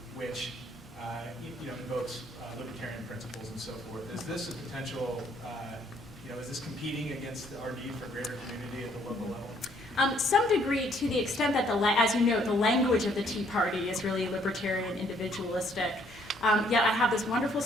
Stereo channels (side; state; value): both; normal; correlation 0.66